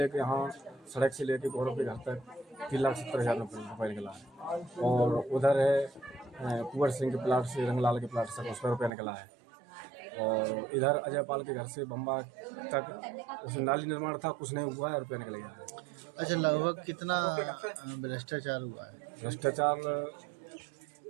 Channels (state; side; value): drops out; left; at 8.9 s